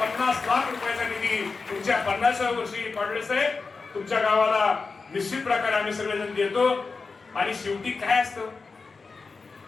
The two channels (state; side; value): quieter; right; 4.4 dB